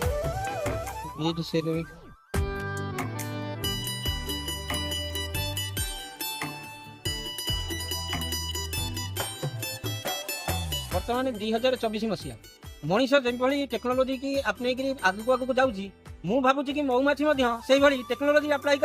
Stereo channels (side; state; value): both; identical; correlation 1.00